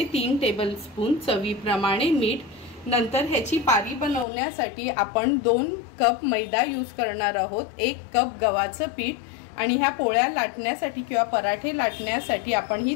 3 टेबलस्पून, चवीप्रमाणे मीठ। नंतर ह्याची पारी बनवण्यासाठी आपण 2 कप मैदा यूज करणार आहोत, 1 कप गव्हाचं पीठ आणि ह्या पोळ्या लाटण्यासाठी किंवा पराठे लाटण्यासाठी आपण ही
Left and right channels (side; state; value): right; drops out; at 4.2 s